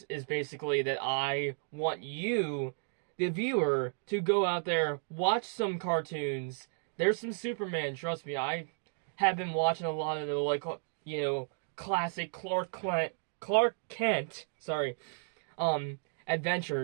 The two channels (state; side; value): silent; left; digital silence